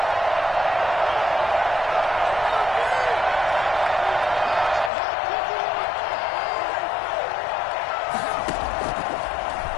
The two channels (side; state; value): right; drops out; at 4.9 s